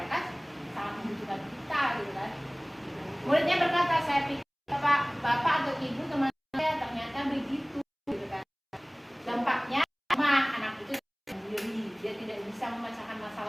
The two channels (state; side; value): identical; both; correlation 1.00